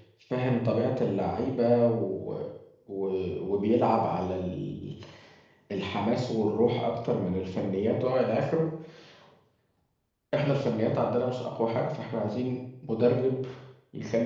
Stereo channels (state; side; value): identical; both; correlation 1.00